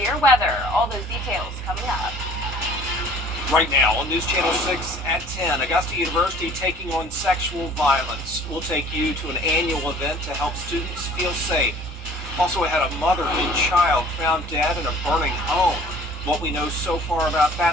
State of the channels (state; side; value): normal; both; correlation 0.51